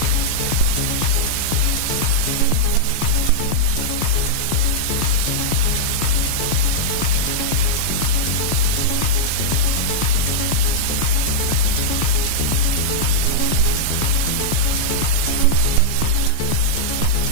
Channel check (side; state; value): both; different; correlation -0.03